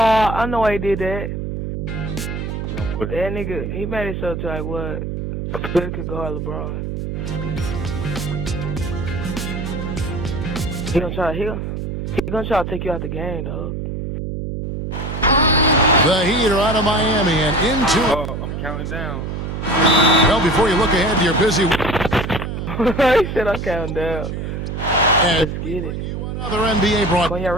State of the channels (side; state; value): right; noise; hum, 4 dB below the sound